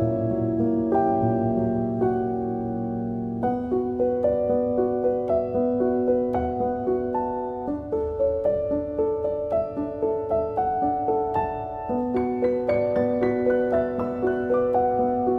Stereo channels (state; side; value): identical; both; correlation 1.00